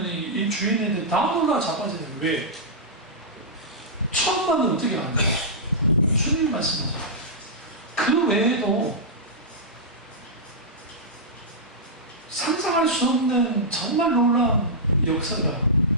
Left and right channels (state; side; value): normal; both; correlation -0.12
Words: 이 주인한테 다 놀라 자빠져요. 왜? 처음 봤는데 어떻게 아는 거야? 주님 말씀하죠. 그 외에도 상상할 수 없는 정말 놀라운 역사가,